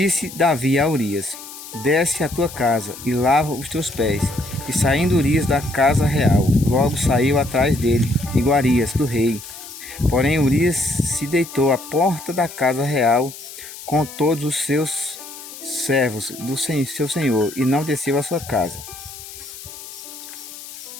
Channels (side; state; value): left; noise; hiss, 14 dB below the sound